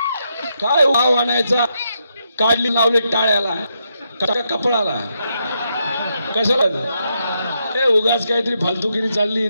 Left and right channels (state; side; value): inverted; both; correlation -0.80